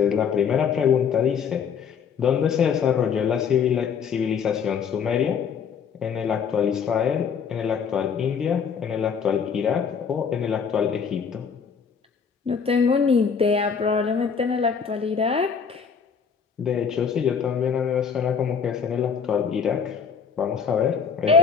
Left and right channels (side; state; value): right; quieter; 6.6 dB